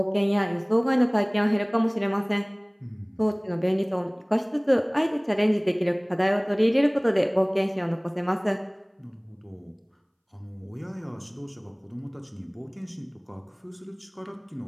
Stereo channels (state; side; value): identical; both; correlation 1.00